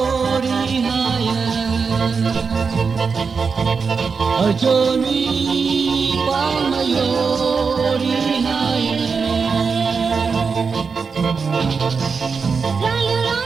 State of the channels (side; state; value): left; quieter; 5.3 dB